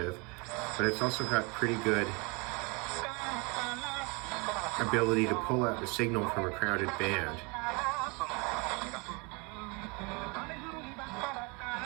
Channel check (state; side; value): quieter; left; 29.6 dB